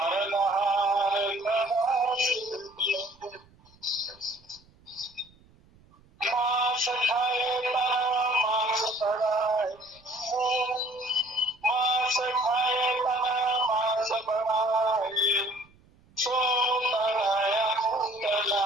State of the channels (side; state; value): right; noise; rumble, 29 dB below the sound